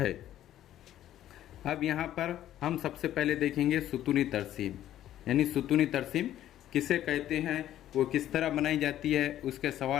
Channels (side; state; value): right; quieter; 12.3 dB